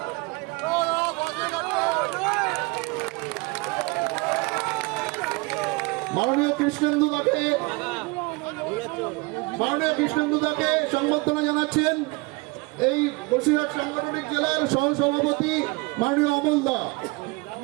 মাননীয় কৃষ্ণেন্দু দাকে সংবর্ধনা জানাচ্ছেন এই বসিরহাট সাংগঠনিক জেলার সহসভাপতি মাননীয় অমল দা।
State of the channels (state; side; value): quieter; left; 26.4 dB